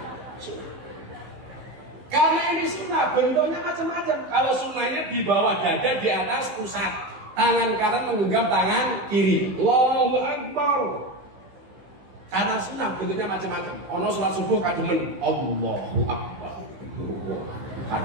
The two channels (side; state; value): left; late; 15 ms